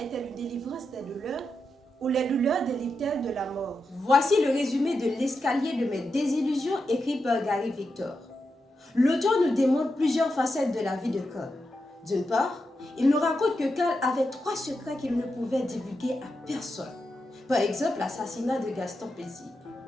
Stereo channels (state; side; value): normal; both; correlation 0.87